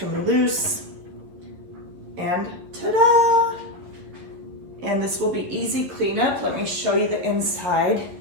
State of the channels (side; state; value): left; late; 11 ms